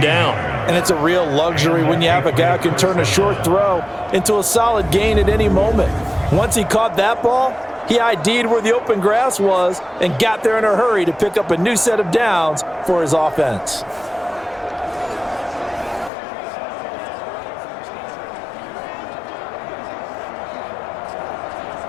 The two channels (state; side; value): drops out; right; at 16.1 s